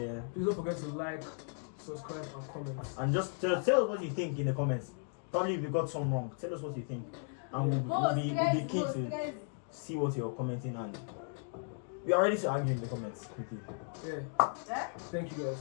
Please don't forget to like, subscribe, and comment. And just tell us what you think in the comments. Probably if we got some wrong, tell us what you think, and we'll be keen to see what you're commenting, and we are ready to argue in the comments quickly. Yeah. Thank you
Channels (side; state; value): right; silent; 54 dB below the other